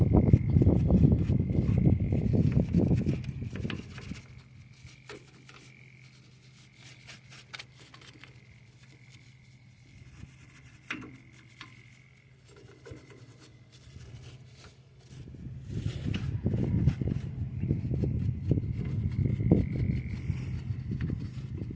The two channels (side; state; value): both; identical; correlation 1.00